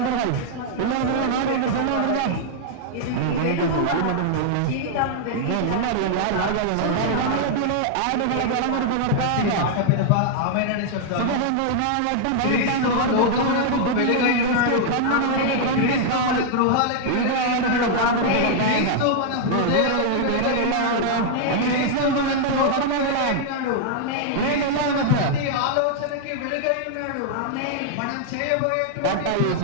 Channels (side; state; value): both; different; correlation -0.01